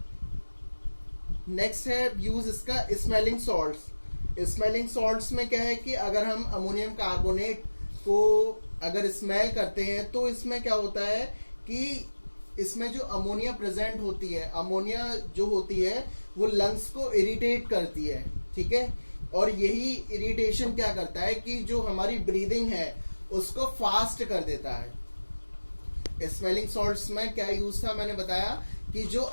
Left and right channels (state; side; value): inverted; both; correlation -1.00